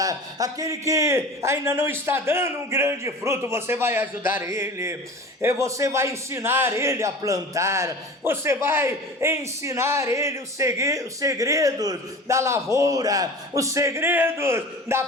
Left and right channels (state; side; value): normal; both; correlation 0.37